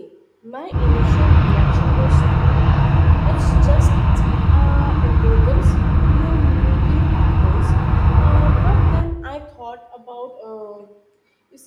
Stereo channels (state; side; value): identical; both; correlation 1.00